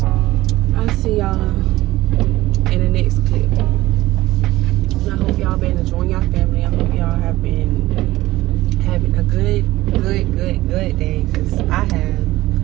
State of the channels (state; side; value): quieter; left; 17.3 dB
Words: I'll see y'all in the next clip. And I hope y'all been enjoying your family. I hope y'all have been having a good day, because I have.